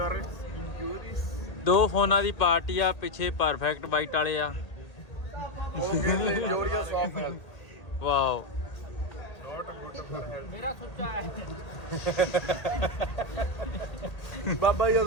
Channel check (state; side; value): late; right; 1.8 ms